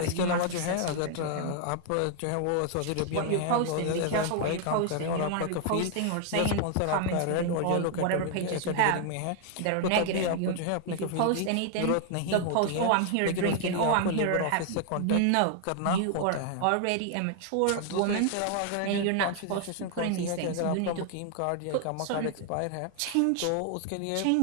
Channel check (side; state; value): both; different; correlation 0.00